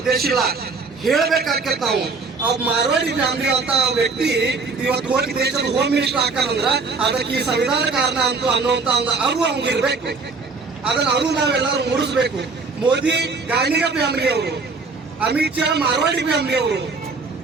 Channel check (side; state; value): left; quieter; 4.2 dB